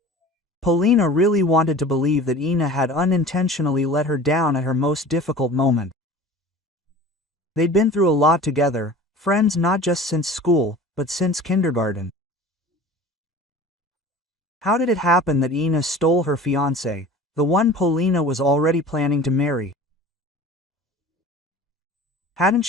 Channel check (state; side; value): normal; both; correlation 0.41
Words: Polina really wanted to believe that Ina had unintentionally let her down at her most difficult moment. They'd been through a lot together, friends not just since school, but since kindergarten. How did it happen that Ina stole her fiancé, the one Polina was already planning to marry? Hadn't